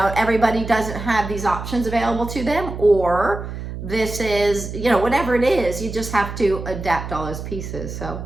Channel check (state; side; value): noise; right; hum, 8 dB below the sound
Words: everybody doesn't have these options available to them, or this is, you know, whatever it is, you just have to adapt all those pieces. So